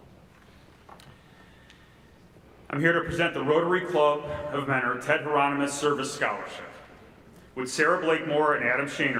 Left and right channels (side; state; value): both; identical; correlation 1.00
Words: I'm here to present the Rotary Club of Mentor Ted Hieronymus Service Scholarship. Would Sarah Blakemore and Adam